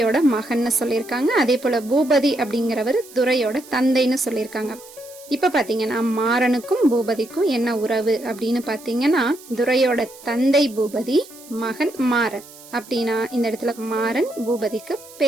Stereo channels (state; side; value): noise; right; hiss, 20 dB below the sound